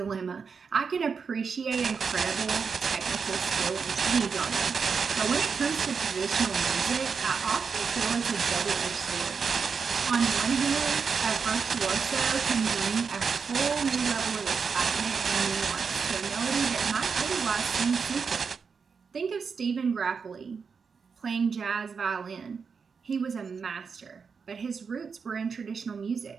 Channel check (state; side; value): quieter; left; 5.7 dB